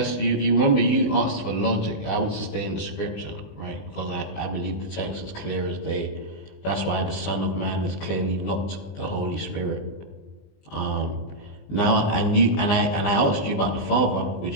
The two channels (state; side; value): late; right; 20 ms